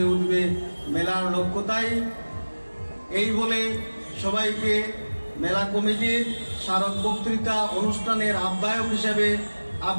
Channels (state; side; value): inverted; both; correlation -1.00